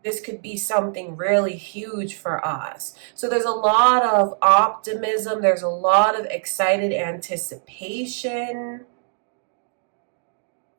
this could be something really huge for us. So there's a lot of optimism. There's a lot of excited anticipation.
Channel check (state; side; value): silent; left; 59 dB below the other